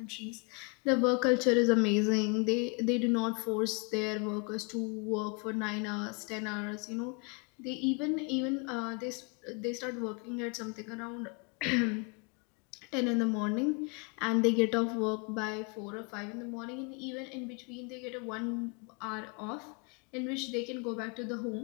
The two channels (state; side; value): quieter; right; 33.4 dB